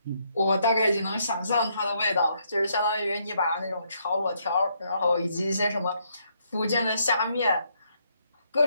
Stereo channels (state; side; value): inverted; both; correlation -0.73